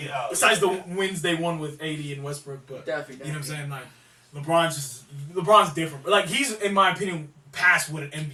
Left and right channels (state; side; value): identical; both; correlation 1.00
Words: Besides the wins they won with AD and Westbrook, but Definitely. you know what I'm saying? Like LeBron's different. But like he's in my opinion past what an